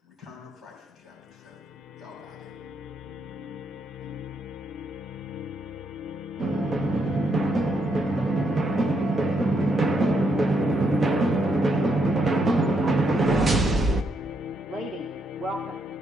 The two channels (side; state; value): both; normal; correlation 0.77